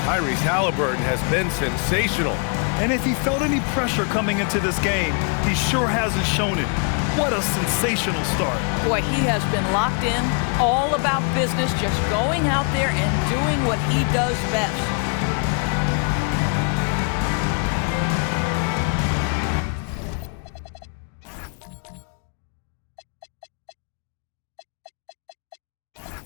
Tyrese Halliburton has been sensational. And if he felt any pressure coming into this game, he sure hasn't shown it. What a sensational start. Boy, he has been locked in, all about business, just going out there and doing what he does best.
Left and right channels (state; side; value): quieter; right; 38.9 dB